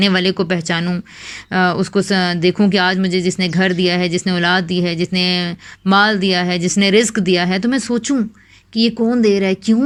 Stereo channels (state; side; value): identical; both; correlation 1.00